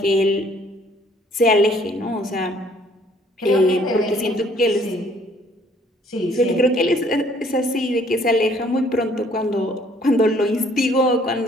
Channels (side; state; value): both; normal; correlation 0.61